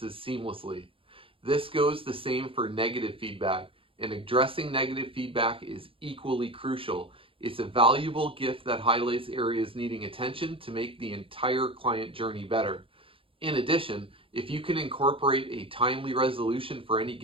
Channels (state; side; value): late; left; 0.26 ms